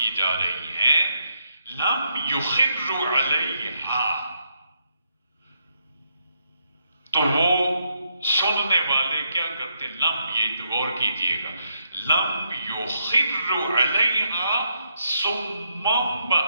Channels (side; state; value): both; inverted; correlation -0.78